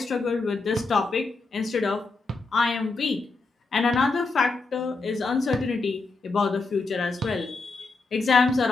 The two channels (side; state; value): right; quieter; 3.7 dB